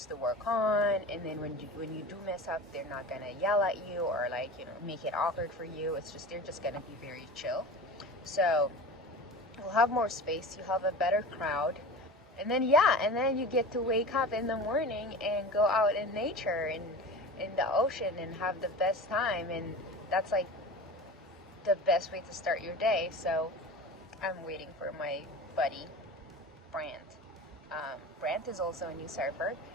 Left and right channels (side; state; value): both; normal; correlation 0.33